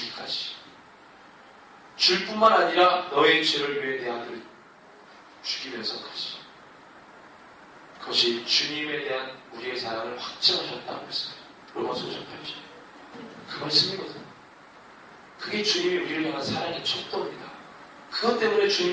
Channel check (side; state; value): both; identical; correlation 1.00